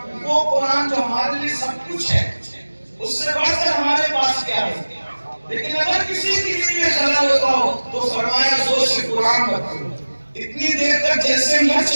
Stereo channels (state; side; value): inverted; both; correlation -1.00